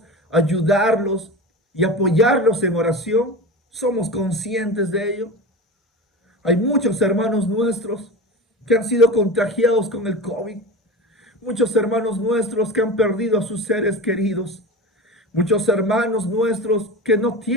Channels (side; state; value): both; normal; correlation 0.29